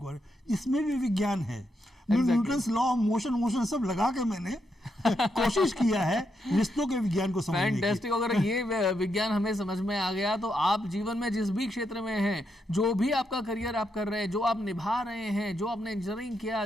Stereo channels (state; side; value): normal; both; correlation 0.81